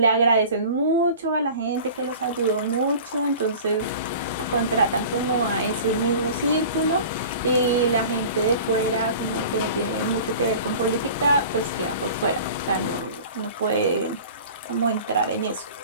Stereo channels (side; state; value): both; inverted; correlation -0.41